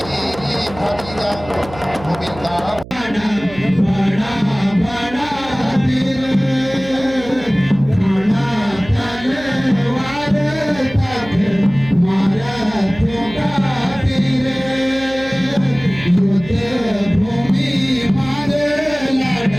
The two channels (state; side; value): noise; right; hum, 16 dB below the sound